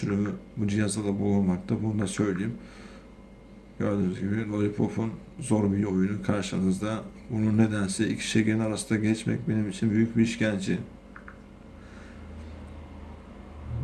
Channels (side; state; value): both; identical; correlation 1.00